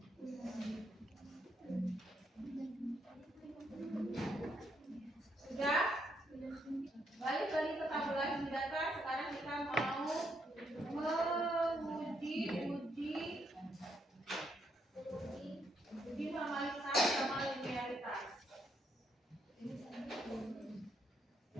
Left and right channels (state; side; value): normal; both; correlation 0.75